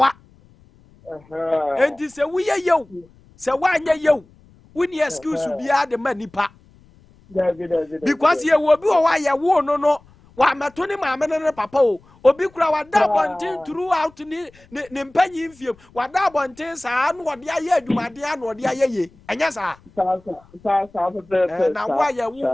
Enti se wiye yew. Se wanya yew. Woni excuse bia de manipa. David. Because ye wo bi wo wa ye wo no. Wa mato ne maame ne papa o. Obi kura wa da bonten throughout ni mpanyi mfiem. Wa da bonten saa no wode aye adwumade a no wode aye ye. Enya saa. Na wa ye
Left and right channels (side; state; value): left; noise; rumble, 28 dB below the sound